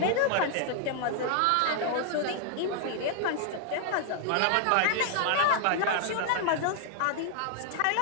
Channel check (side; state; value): both; different; correlation 0.00